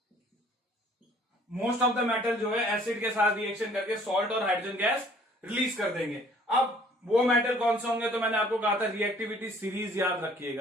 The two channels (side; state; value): both; normal; correlation 0.56